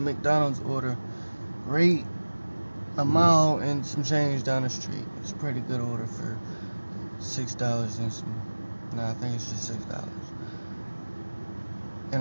McDonald's order. Rate a mile and some change down the street. It's a pretty good order for $6 and some. Nah, I think it's just $6. And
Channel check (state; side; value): inverted; both; correlation -1.00